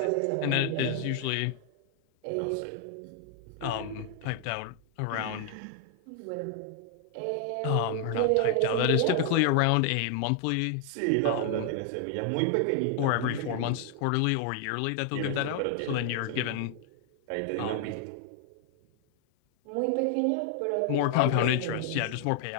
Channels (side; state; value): both; different; correlation 0.00